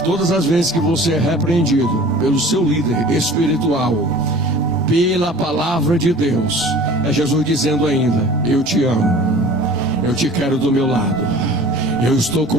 todas as vezes que você é repreendido pelo seu líder espiritual, pela palavra de Deus, é Jesus dizendo ainda: eu te amo, eu te quero do meu lado, eu estou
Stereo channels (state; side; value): normal; both; correlation 0.44